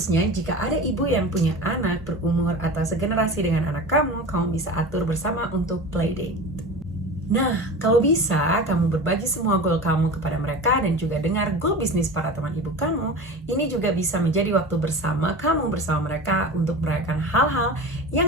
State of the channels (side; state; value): both; normal; correlation 0.32